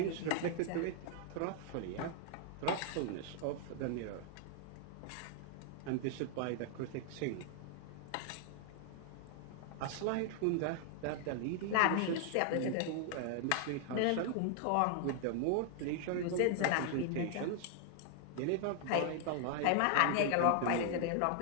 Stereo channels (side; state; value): both; different; correlation -0.01